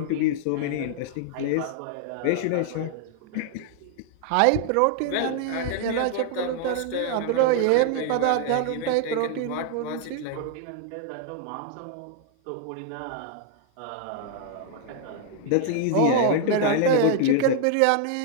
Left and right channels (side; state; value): both; different; correlation 0.00